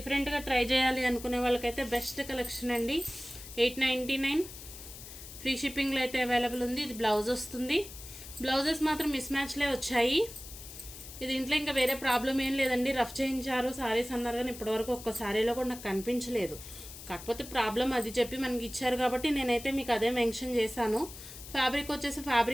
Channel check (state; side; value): noise; left; hiss, 14 dB below the sound